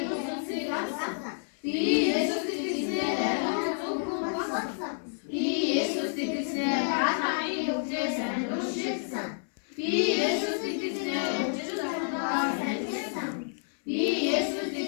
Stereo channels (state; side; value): silent; right; 58 dB below the other